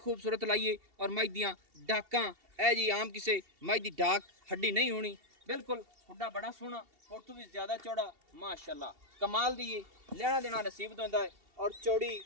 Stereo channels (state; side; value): late; left; 2.7 ms